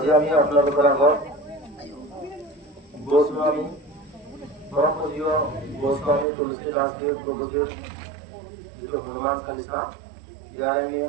আমি আপোনালোকৰ আগত গোস্বামী পৰমপূজ্য গোস্বামী তুলসীদাসদেৱ প্ৰভুজীৰ যিটো হনুমান চালিচা ইয়াৰ আমি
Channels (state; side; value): drops out; left; at 6.2 s